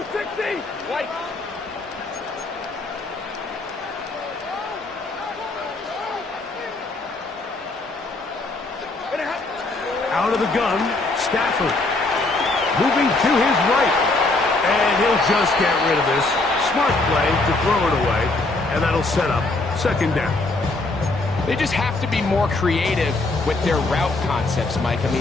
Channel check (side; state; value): right; quieter; 3.2 dB